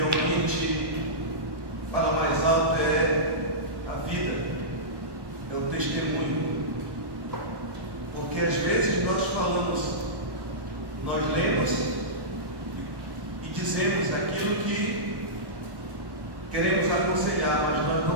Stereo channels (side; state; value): left; late; 1.1 ms